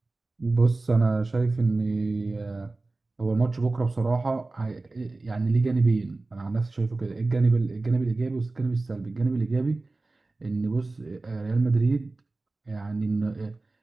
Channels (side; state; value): left; quieter; 3.3 dB